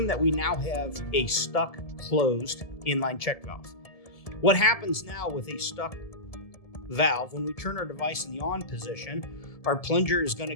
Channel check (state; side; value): late; right; 1.7 ms